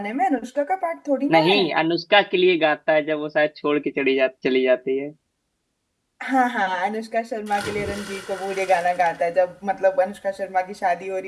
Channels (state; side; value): identical; both; correlation 1.00